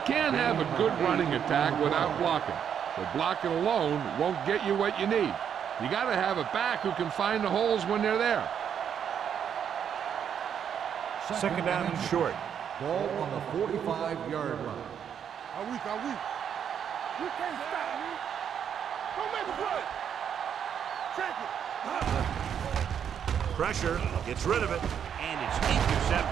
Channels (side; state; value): left; quieter; 8.4 dB